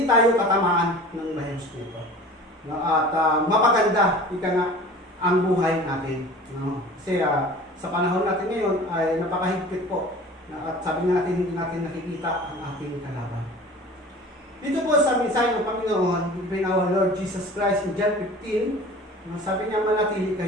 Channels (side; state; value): both; normal; correlation 0.41